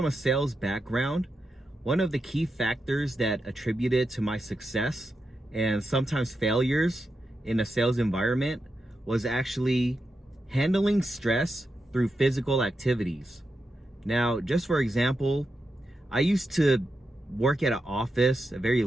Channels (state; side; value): normal; both; correlation 0.87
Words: a sales background, one of the key factors that attributed to my success and sometimes failures in a sales environment was actually handling stress through physical activities. Now, just for example, I used to work at an office, a very